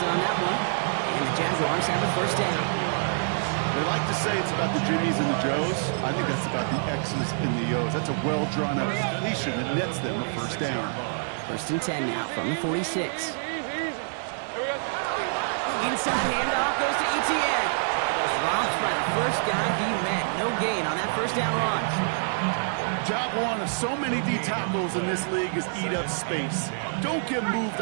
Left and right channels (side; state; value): left; silent; 60 dB below the other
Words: on that one. And the Jaguars have a first down. They like to say it's about the Jimmies and the Joes. I think that's about the X's and the O's. That's a well-drawn-out completion that nets them a first down. 1st and 10 now from the 46. Inside handoff goes to Etienne. Dropped by the first guy he met. No gain on that first down run. Job one of so many D tackles in this league is eat up space. Don't get moved